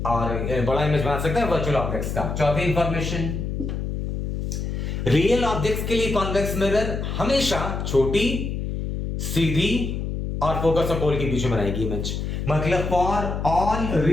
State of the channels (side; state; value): left; noise; hum, 3 dB below the sound